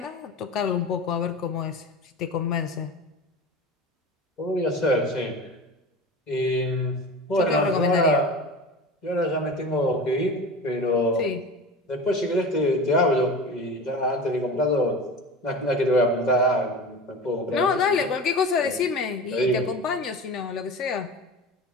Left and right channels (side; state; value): both; normal; correlation 0.32